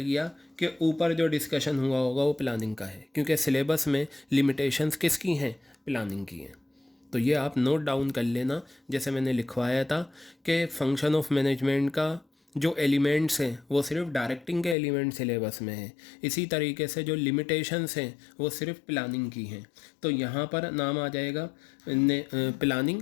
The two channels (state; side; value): drops out; right; at 14.8 s